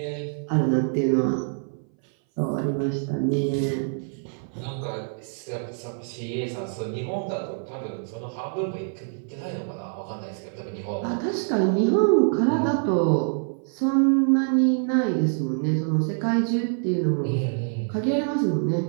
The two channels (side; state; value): left; silent; 59 dB below the other